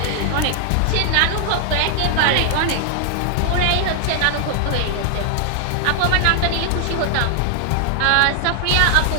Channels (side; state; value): both; different; correlation 0.00